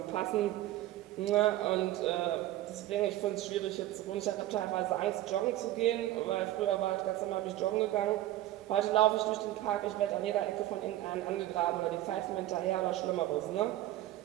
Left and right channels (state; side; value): quieter; left; 14.8 dB